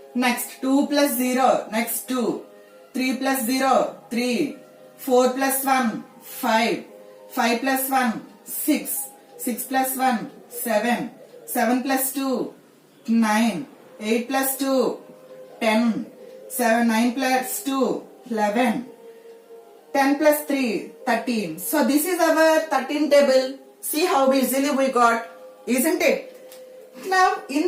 Next, 2 plus 0. Next, 2. 3 plus 0, 3. 4 plus 1, 5. 5 plus 1, 6. 6 plus 1, 7. 7 plus 2, 9. 8 plus 2, 10. 9 plus 2, 11. 10 plus 3, 13. So this is our 13 table. See how easily we got, isn't it? Now in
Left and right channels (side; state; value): both; identical; correlation 1.00